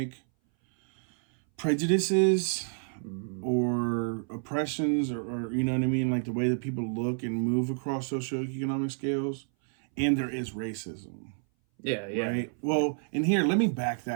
prejudices or oppressions or you know what I mean, like the way that people look and move across socioeconomic scales, and there is racism. Yeah. Right? Well, and here, let me back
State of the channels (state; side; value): silent; left; 58 dB below the other